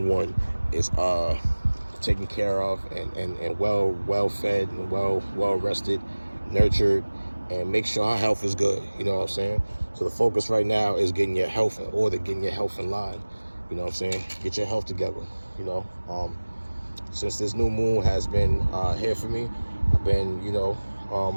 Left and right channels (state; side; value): inverted; both; correlation -1.00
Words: one, is taken care of and well fed and well rested, nurtured, and make sure her health is good. You know what I'm saying? So the focus right now is getting your health in order, getting your health in line. You know what I'm saying? Get your health together. You know, since this new moon has been here for me, I've been, you know, I